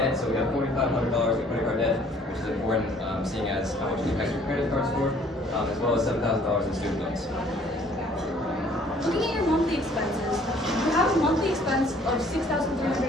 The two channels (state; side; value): normal; both; correlation 0.58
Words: So we have $4,500 in credit card debt, which is important, seeing as how much it impacts your credit card score, as well as $7,000 in student loans. Looking at your monthly expenses, you have a monthly expense of